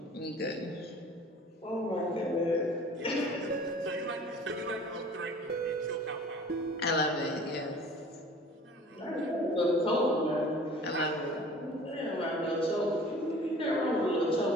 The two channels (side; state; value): both; normal; correlation 0.46